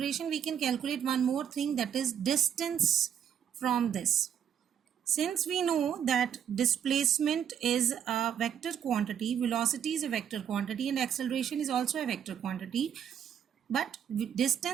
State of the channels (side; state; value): left; quieter; 8.8 dB